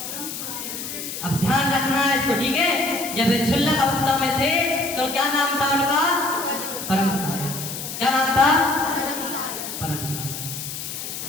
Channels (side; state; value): left; noise; hiss, 7 dB below the sound